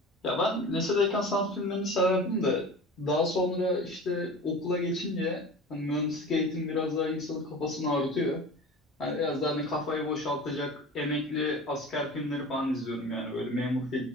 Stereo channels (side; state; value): both; normal; correlation 0.36